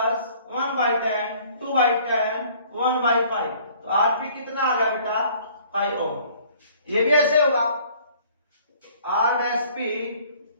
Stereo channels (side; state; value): both; inverted; correlation -0.55